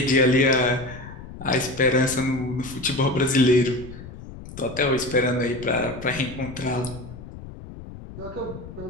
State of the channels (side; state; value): left; noise; rumble, 14 dB below the sound